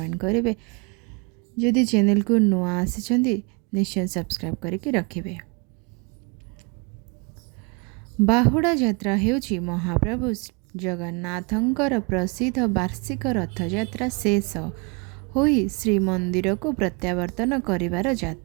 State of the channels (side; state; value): left; quieter; 31.4 dB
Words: करेंगे। जदि चैनल को नुआ आसी निश्चय सब्सक्राइब करके रखिए। बाहुड़ा यात्रा हेउची महाप्रभु जगन्नाथंकर प्रसिद्ध वार्षिक रथयात्रा शेष होई श्रीमंदिर को प्रत्यावर्तन करिवार